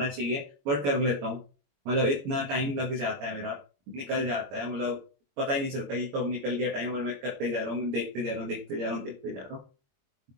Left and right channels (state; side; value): late; left; 22 ms